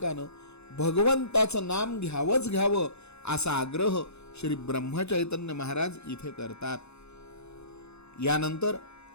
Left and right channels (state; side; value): late; right; 0.81 ms